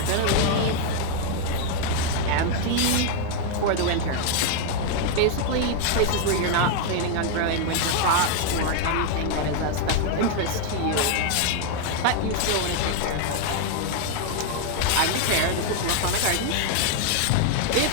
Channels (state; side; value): different; both; correlation 0.00